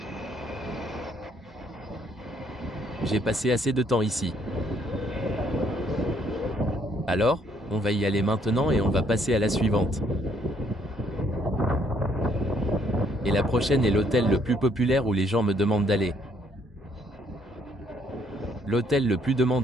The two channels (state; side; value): normal; both; correlation 0.68